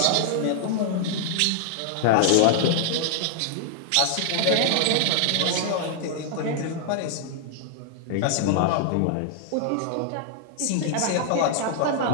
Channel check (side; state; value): both; different; correlation 0.00